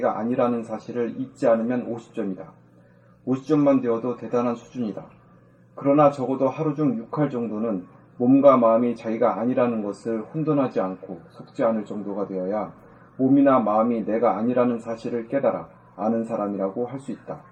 아니라는 사실을 잊지 않으면 50점이다. 50점만 되어도 대단한 수준이다. 그러나 적어도 하루 중 6할 정도는 몸과 마음이 자기가 아니라는 것을 혼돈하지 않고 속지 않을 정도가 되어야 몸이나 마음이 내가 아니라는 사실을 깨달아 아는 사람이라고 할 수 있다.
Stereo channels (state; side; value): identical; both; correlation 1.00